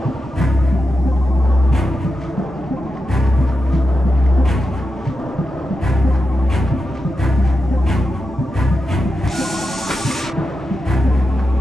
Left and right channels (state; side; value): normal; both; correlation 0.89